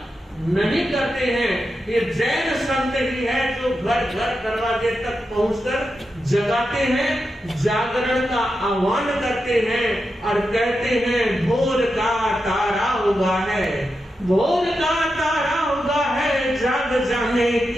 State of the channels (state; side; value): normal; both; correlation 0.88